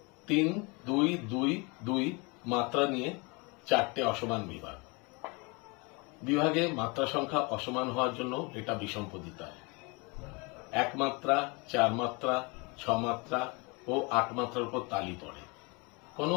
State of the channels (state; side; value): quieter; right; 28.8 dB